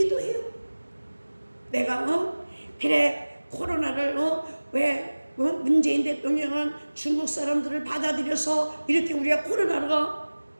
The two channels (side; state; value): both; inverted; correlation -1.00